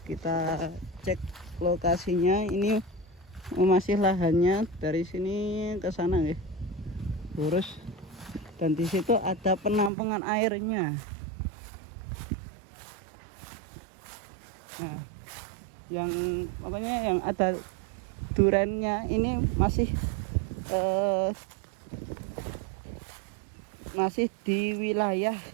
Kita cek lokasinya. Ini masih lahannya dari sini ke sana nggih. Lurus. Dan di situ ada penampungan airnya. Nah, yang ada durannya ini masih di wilayah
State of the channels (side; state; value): left; drops out; at 9.9 s